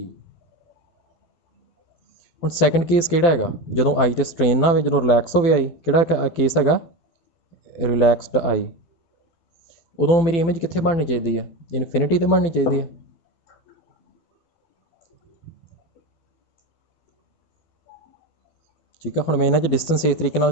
हुण सैकेंड केस किहड़ा हैगा, जदों आई ते स्ट्रेन ना हो, जदों रिलैक्स हो आई, किहड़ा केस हैगा रिलैक्सड आई, उदों मेरी इमेज कित्थे बननी चाहिए है, इनफिनिटी ते बननी चाहिए है। ठीक है, हुण मैं इन्हां च डिस्टेंस इस तरीके नाल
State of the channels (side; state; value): right; late; 12 ms